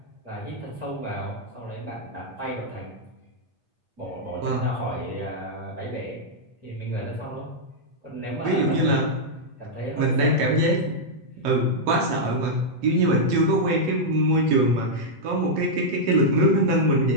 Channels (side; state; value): left; late; 8.3 ms